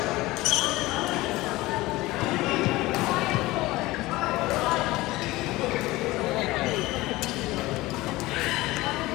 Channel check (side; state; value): right; quieter; 19.3 dB